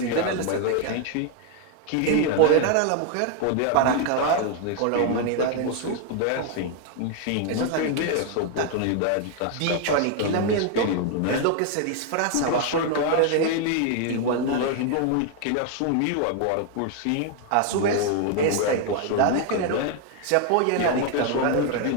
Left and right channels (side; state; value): both; different; correlation 0.00